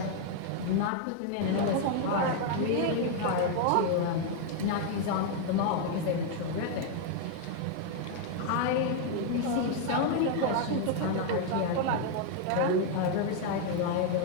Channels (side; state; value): both; different; correlation 0.00